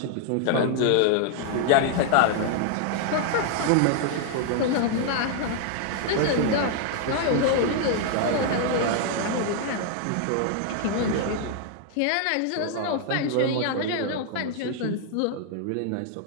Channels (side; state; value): both; different; correlation 0.00